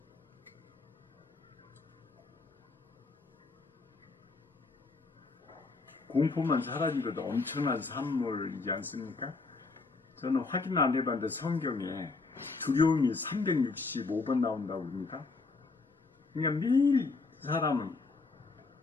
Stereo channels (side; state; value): right; quieter; 4.0 dB